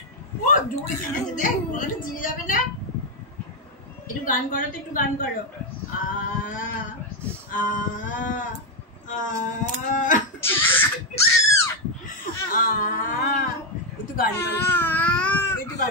একটু গান করো তো, একটু গান করো। একটু গান করো, একটু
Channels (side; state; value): both; normal; correlation 0.05